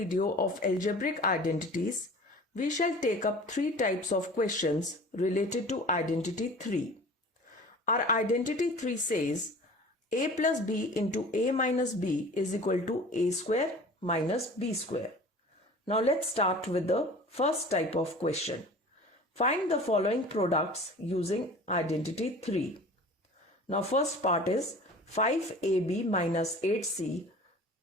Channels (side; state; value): both; normal; correlation 0.42